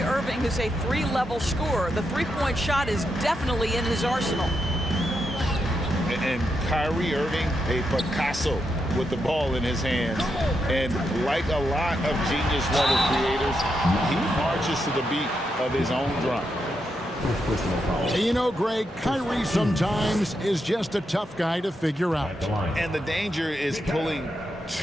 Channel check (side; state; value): both; normal; correlation 0.84